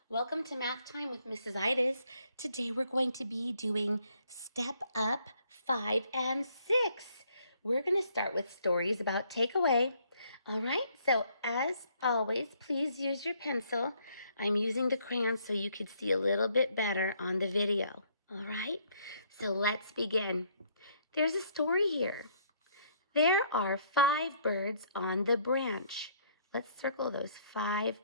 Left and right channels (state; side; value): inverted; both; correlation -0.66